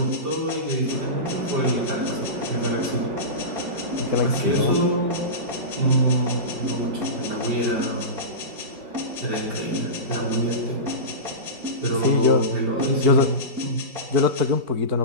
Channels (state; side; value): late; left; 5.0 ms